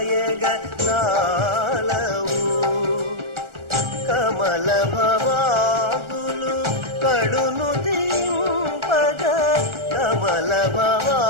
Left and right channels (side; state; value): left; late; 1.4 ms